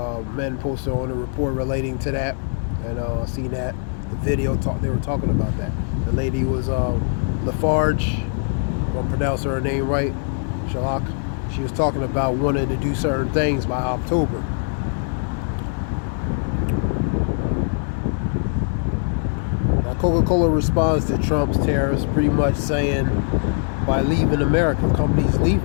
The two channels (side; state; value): right; silent; 64 dB below the other